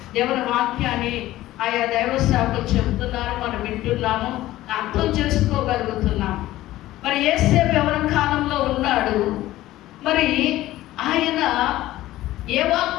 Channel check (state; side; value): quieter; right; 15.7 dB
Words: దేవుని వాక్యాన్ని ఆయా దైవ సేవకులు చెబుతున్నారు, మనం వింటున్నాము, అర్థం చేసుకోగలుగుతున్నాం. మరి యేసేపు ఎవరి కాలంలో ఉన్నాడు? మరి ఆయన ఏ